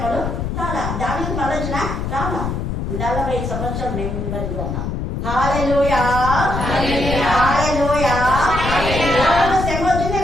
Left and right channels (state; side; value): noise; left; rumble, 3 dB below the sound